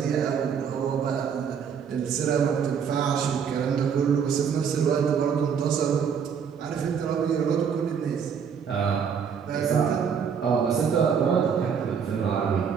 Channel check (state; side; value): quieter; left; 7.0 dB